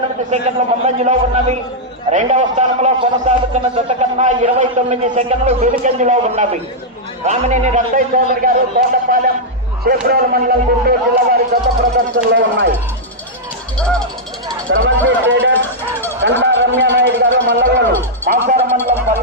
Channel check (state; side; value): normal; both; correlation -0.06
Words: సెకండ్లు ముందంజలో ఉన్నవి. రెండవ స్థానంలో కొనసాగుతున్న జత కన్నా 29 సెకండ్లు వెనుకంజలో ఉన్నవి. రామినేని రత్తయ్య చౌదరి గారు తోటపాలెం చేబ్రోలు మండలం గుంటూరు జిల్లా వారి జత ప్రదర్శనలో ఉన్నాయి. శ్రవంతి ట్రేడర్స్ కంటా రమ్యానాయుడు గారు మల్లగోలు మాసార మండలం